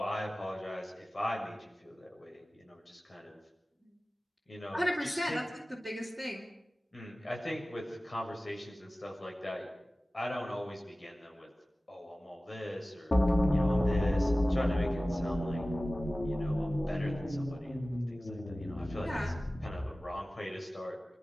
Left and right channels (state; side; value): normal; both; correlation 0.97